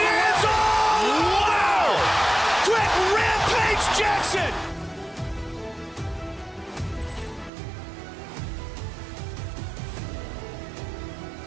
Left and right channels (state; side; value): drops out; left; at 7.5 s